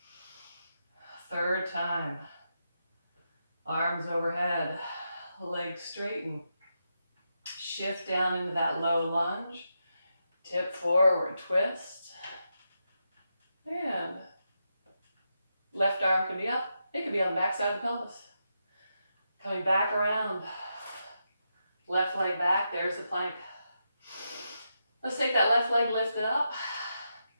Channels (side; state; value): both; inverted; correlation -0.85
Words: 3rd time. Arms overhead, legs straighten. Shift down into that low lunge, tip forward, twist, and left arm can be up. It could be on the back side of the pelvis. Coming back around, left leg back, there's the plank. Let's take that left leg lifted up,